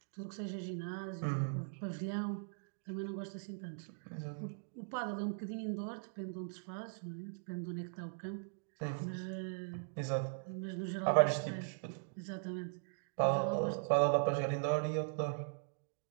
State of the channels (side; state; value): left; silent; digital silence